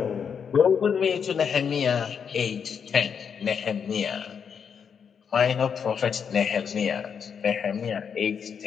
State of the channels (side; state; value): right; quieter; 7.0 dB